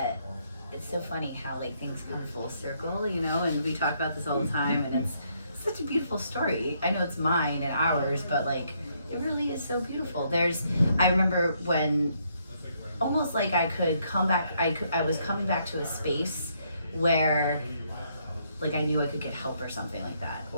funny how things come full circle, and we talk about this all the time, and it's such a beautiful story. I know it's mine and ours, but it really is so beautiful. I remember when almost like I could come back, I was coming back to a space where I knew I could get help or something like that,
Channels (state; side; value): inverted; both; correlation -0.72